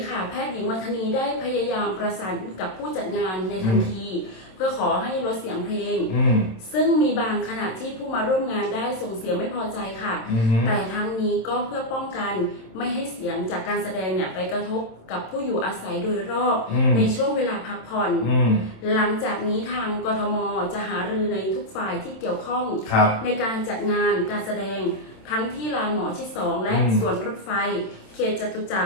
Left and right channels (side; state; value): right; late; 27 ms